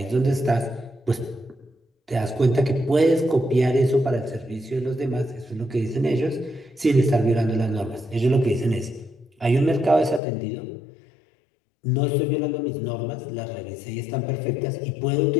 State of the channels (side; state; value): right; drops out; at 10.2 s